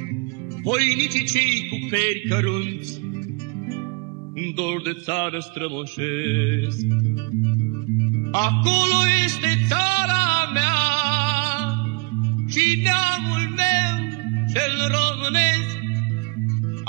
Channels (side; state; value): left; quieter; 29.4 dB